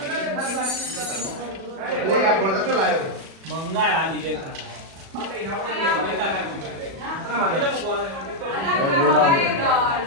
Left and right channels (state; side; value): late; left; 37 ms